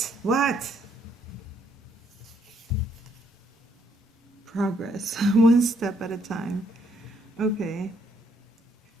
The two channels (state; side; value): normal; both; correlation 0.71